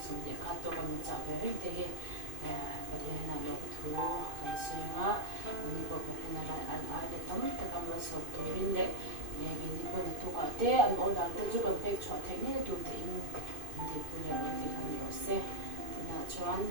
xong thì khát tôi cũng chào về hết thì có thể là lúc thu cái suy ngã mình có thể là anh ai để tóm tất cả mọi sự tôi bên đấy mình đi qua thu cả thế anh ở đó tôi chú cần phải cho thế này tôi thì thì bây giờ thì không hiểu sẽ thì là cho anh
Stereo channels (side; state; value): left; late; 2.5 ms